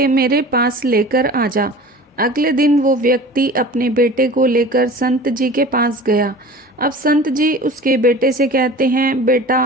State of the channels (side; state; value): both; normal; correlation 0.39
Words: मेरे पास लेकर आ जा। अगले दिन वो व्यक्ति अपने बेटे को लेकर संत जी के पास गया। अब संत जी उसके बेटे से कहते हैं,